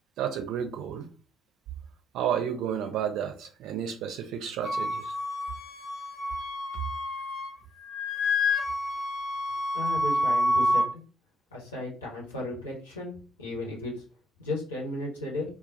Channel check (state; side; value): normal; both; correlation 0.72